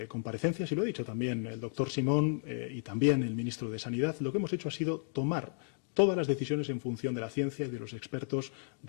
comparecencias y lo ha dicho también el doctor Simón y también el ministro de Sanidad, lo que hemos hecho ha sido tomar todas las decisiones en función de la ciencia y de los expertos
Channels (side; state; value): right; silent; digital silence